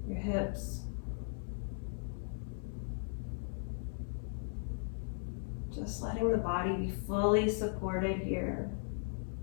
your hips. Just letting the body be fully supported here.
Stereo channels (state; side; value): silent; right; 53 dB below the other